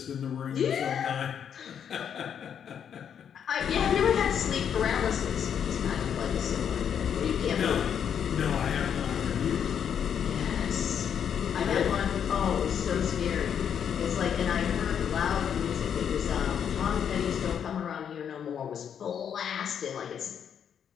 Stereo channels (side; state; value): right; quieter; 8.2 dB